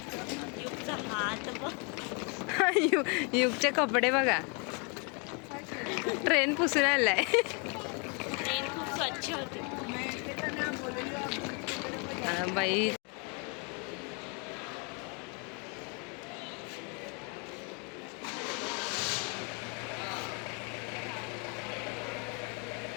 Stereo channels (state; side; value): quieter; right; 34.6 dB